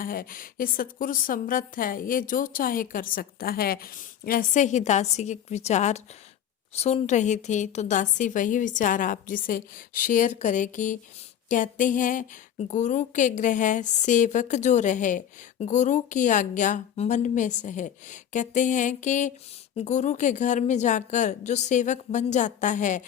है। ये सतगुरु समर्थ है, ये जो चाहे कर सकता है। ऐसे ही दासी के विचार सुन रही थी तो दासी वही विचार आप जिसे शेयर करेगी। कहते हैं गुरु के ग्रह सेवक जो रहे, गुरु की आज्ञा मन में सहे। कहते हैं कि गुरु के घर में जाकर जो सेवक बन जाता है,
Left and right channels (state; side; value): quieter; right; 9.6 dB